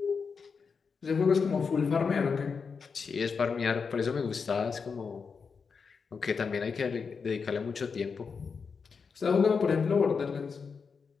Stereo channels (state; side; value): quieter; right; 5.5 dB